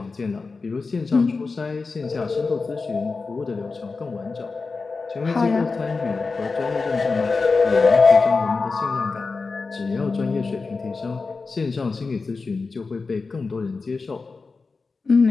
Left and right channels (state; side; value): quieter; right; 4.2 dB